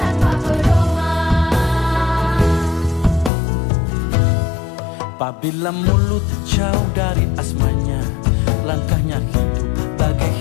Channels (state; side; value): drops out; right; at 3.3 s